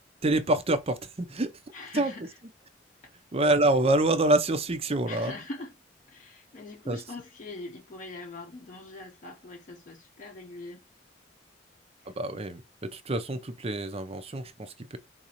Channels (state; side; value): normal; both; correlation 0.36